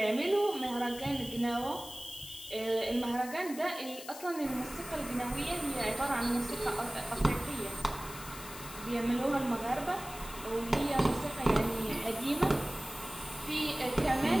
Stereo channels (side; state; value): left; noise; hiss, 13 dB below the sound